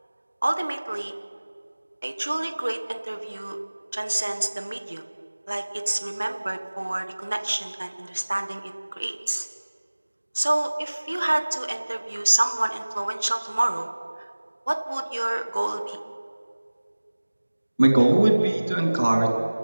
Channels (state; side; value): inverted; both; correlation -1.00